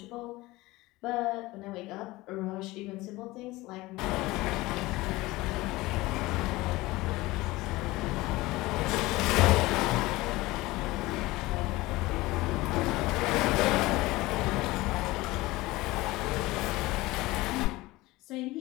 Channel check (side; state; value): right; quieter; 20.0 dB